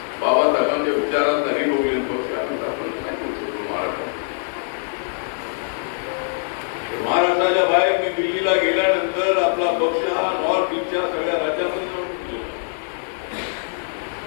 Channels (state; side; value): silent; right; digital silence